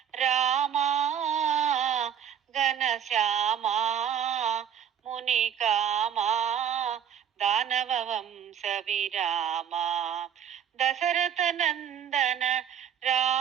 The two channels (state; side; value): quieter; left; 8.8 dB